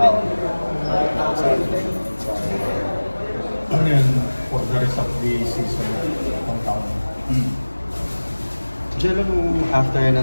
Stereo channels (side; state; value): both; inverted; correlation -1.00